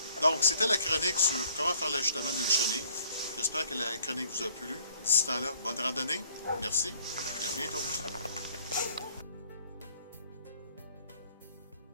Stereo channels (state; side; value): inverted; both; correlation -0.59